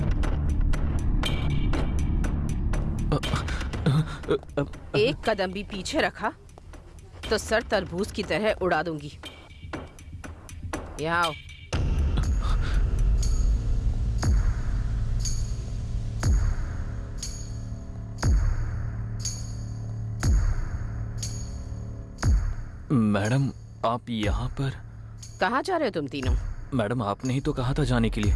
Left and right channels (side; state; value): both; identical; correlation 1.00